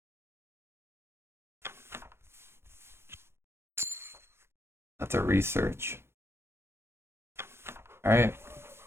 That's a research. Alright.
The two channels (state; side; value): late; left; 0.12 ms